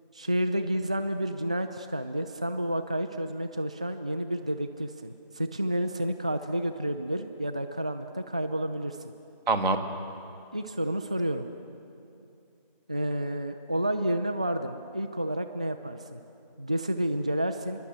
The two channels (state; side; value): inverted; both; correlation -0.80